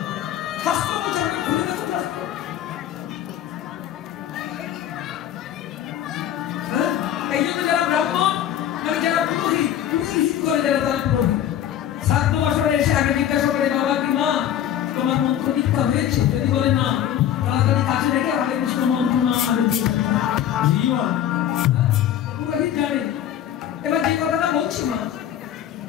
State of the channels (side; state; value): right; quieter; 10.7 dB